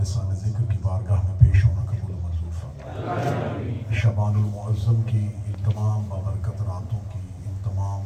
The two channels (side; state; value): both; identical; correlation 1.00